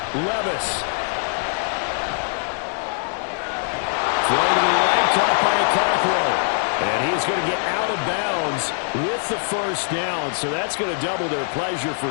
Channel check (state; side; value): silent; right; 64 dB below the other